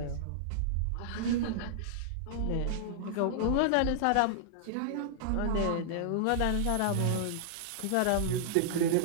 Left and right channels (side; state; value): both; different; correlation -0.01